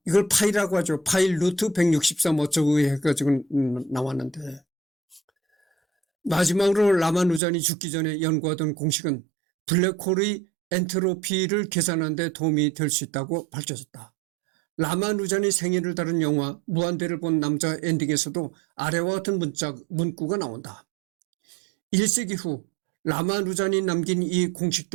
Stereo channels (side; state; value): left; drops out; at 7.4 s